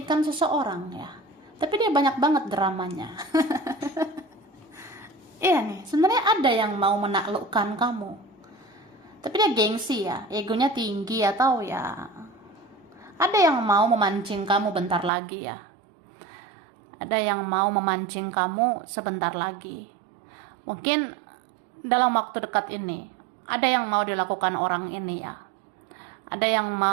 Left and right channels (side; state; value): left; drops out; at 15.1 s